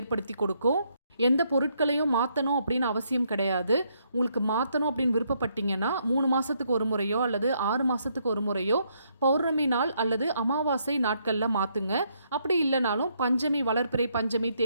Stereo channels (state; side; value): inverted; both; correlation -0.74